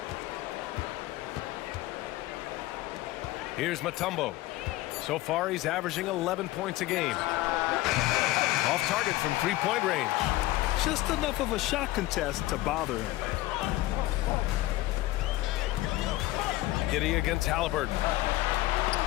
Here's Mutombo. So far, he's averaging 11 points a game. Off target from three-point range. Just enough of a shot contest to bother him. Giddey against Halliburton.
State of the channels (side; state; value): right; quieter; 17.3 dB